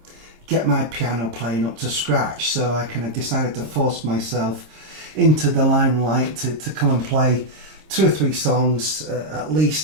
get my piano playing up to scratch, so I kind of decided to force myself into the limelight to come and play 2 or 3 songs at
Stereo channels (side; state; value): left; late; 26 ms